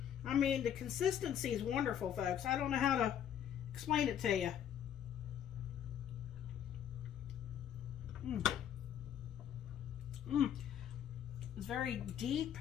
I mean, the consistency is wonderful, folks. I don't know how to explain it to you. It's very deep,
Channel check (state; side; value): quieter; right; 9.6 dB